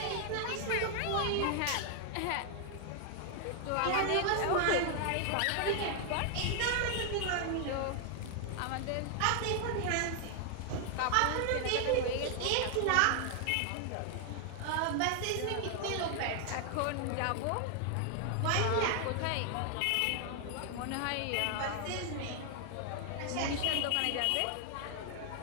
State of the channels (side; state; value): both; different; correlation 0.00